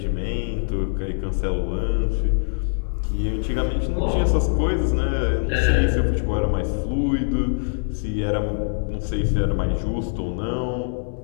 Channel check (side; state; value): right; silent; digital silence